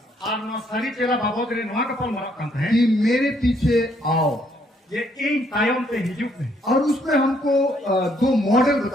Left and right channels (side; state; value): both; normal; correlation 0.69